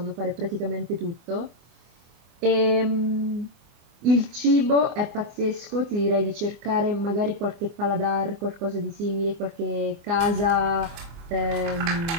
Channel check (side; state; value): left; late; 24 ms